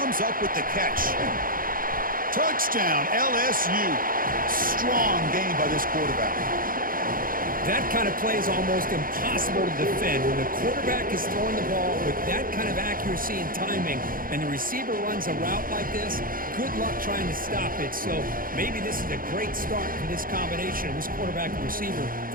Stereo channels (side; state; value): left; late; 0.41 ms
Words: up with the catch. Touchdown, LSU. Strong game by this quarterback. That kind of play is almost impossible to defend. When the quarterback is throwing the ball with that kind of accuracy and timing, and the receiver runs a route like this, good luck trying to stop it. So maybe this is a great start for this combination of this quarterback and receiver